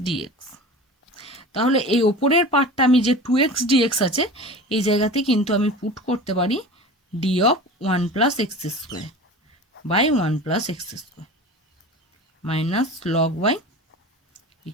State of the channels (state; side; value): normal; both; correlation 0.35